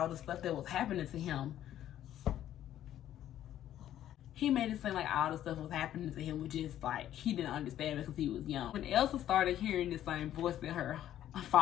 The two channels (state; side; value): quieter; right; 11.8 dB